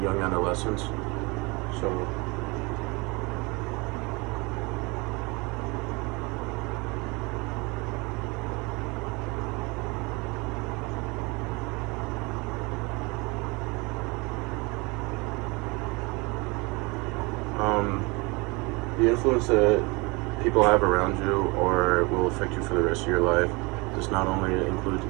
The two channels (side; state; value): left; quieter; 26.9 dB